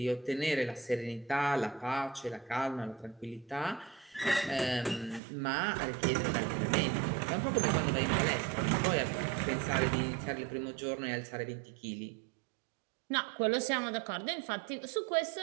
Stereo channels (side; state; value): left; drops out; at 5.2 s